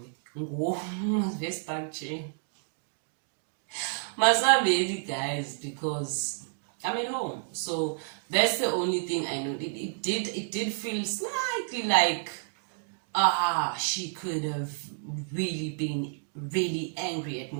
this country. Masabeli, guys, because I'm at home. So that's the only thing I know. It did feel slightly like she could have really been really angry at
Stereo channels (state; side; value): silent; left; digital silence